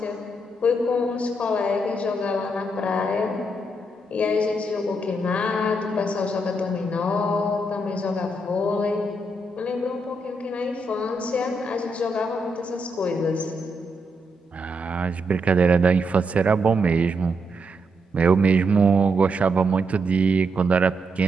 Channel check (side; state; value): both; normal; correlation 0.80